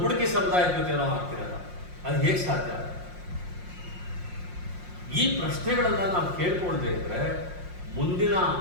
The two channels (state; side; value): late; left; 5.6 ms